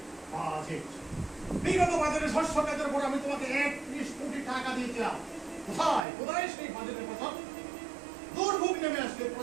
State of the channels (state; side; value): drops out; left; at 6.1 s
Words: বাজেট, বিগত বাজারে শস্য খাতের উপর আমি তোমাকে 31 কোটি টাকা দিয়েছিলাম। কোথায় কোথায় সেই বাজেটের কথা? দুর্ভোগ নেমে আসলে